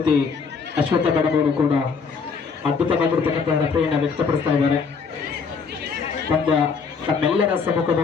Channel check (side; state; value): right; quieter; 5.5 dB